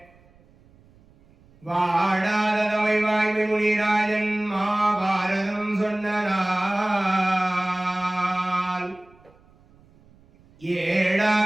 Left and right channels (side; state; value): right; noise; rumble, 29 dB below the sound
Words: வாடாதவை வாய்மை முனிராஜன் மாபாரதம் சொன்னால்